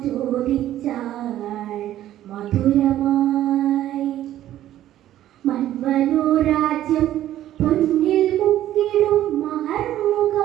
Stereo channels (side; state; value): left; quieter; 12.8 dB